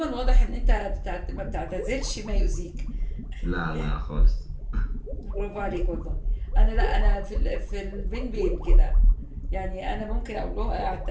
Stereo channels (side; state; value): both; identical; correlation 1.00